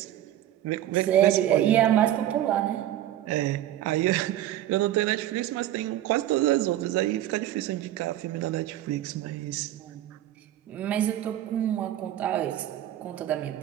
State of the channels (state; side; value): quieter; left; 12.8 dB